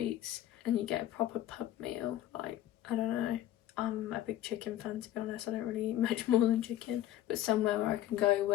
and you get a proper pub meal. Like, I don't know, I'm a big chicken fan, to be honest. I don't really eat much more than chicken, but somewhere where I can go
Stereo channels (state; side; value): quieter; right; 13.1 dB